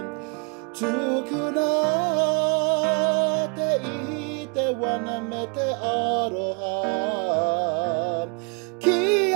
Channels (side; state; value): left; quieter; 35.0 dB